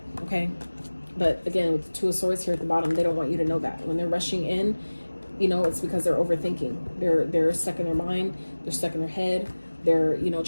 okay? But again, with the Two of Swords here at the bottom, they don't want you to know that. When they're rushing in, it's because they're overthinking. They're stuck in their mind. They're stuck in their head. They're, trying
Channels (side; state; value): both; inverted; correlation -1.00